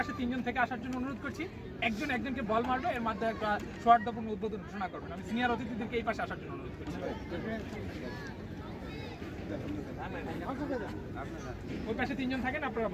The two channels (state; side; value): identical; both; correlation 1.00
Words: 3 জন থেকে আসার জন্য অনুরোধ করছি। একজনকে বল মারবে, এর মাধ্যমে একটা সৌহার্দ্যপূর্ণ উদ্বোধন ঘোষণা করবেন। আমি সিনিয়র অতিথিদেরকে এই পাশে আসার জন্য অনুরোধ করছি। ওই পাশে 3 জন থাকেন, আপনারা